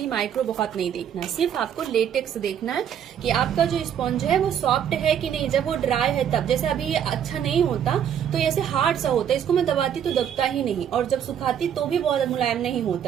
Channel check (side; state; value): left; quieter; 9.0 dB